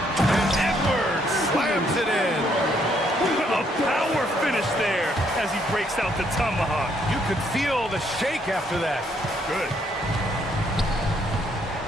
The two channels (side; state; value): both; normal; correlation 0.70